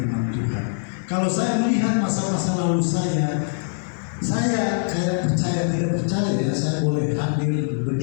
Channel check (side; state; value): right; silent; 61 dB below the other